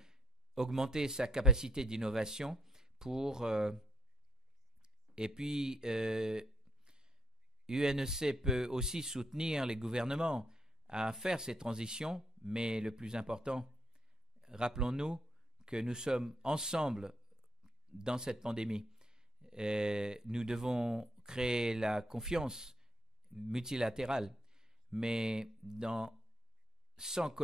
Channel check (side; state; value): both; normal; correlation 0.75